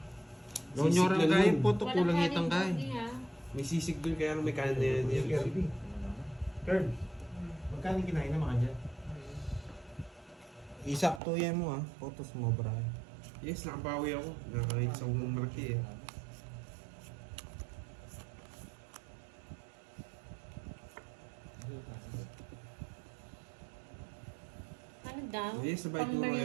Nonyoran Sisig lang kaya yun. po to Walang kulang kanin itang kaya. cookie, ha? May sisig dun kaya may kanin na yan. Kern, magkano kinain na mga dyan? Isakto yan mo ah. Photos mo, bra. Yes, nakabawi ako. Nakakita sa umang malaki eh. Ano daw? Yes, sabay turo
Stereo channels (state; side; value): drops out; left; at 11.2 s